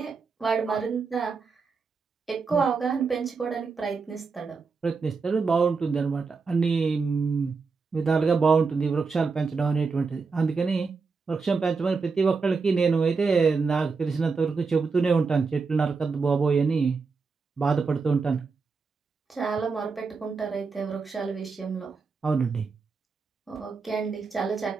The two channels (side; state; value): left; quieter; 4.8 dB